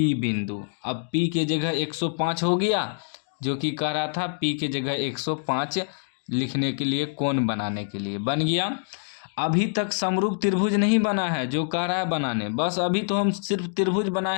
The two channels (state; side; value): silent; right; digital silence